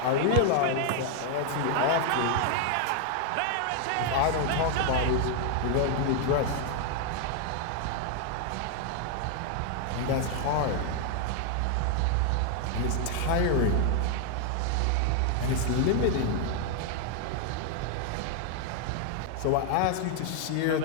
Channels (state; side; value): different; both; correlation 0.00